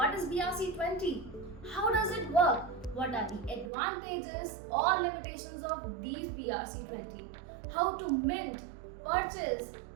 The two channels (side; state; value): left; drops out; at 3.7 s